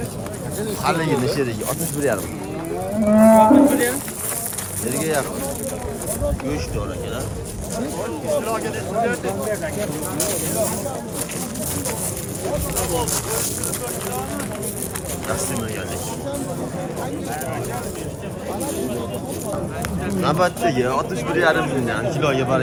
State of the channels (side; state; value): both; identical; correlation 1.00